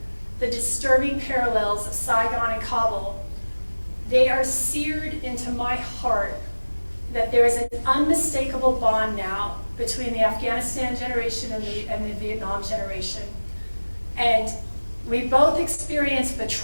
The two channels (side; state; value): both; inverted; correlation -1.00